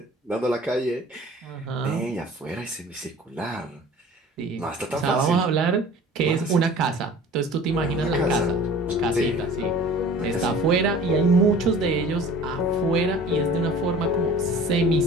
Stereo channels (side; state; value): both; normal; correlation 0.45